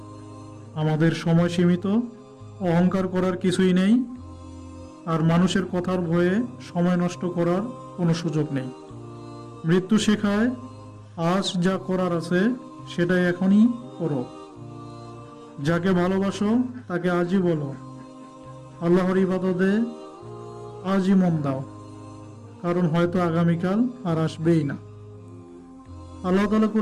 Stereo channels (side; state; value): both; identical; correlation 1.00